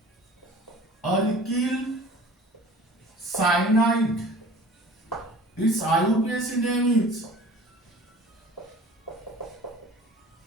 alkyl cyanide. Its IUPAC name is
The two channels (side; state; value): both; normal; correlation 0.45